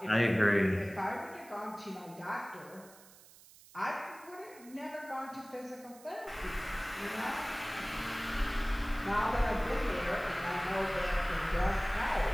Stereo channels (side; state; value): right; noise; hiss, 22 dB below the sound